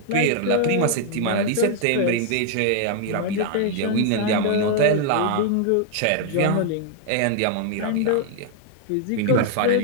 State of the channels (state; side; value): different; both; correlation 0.00